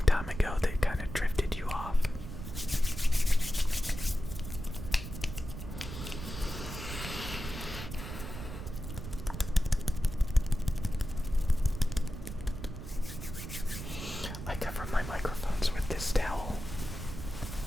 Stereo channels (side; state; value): right; noise; rumble, 8 dB below the sound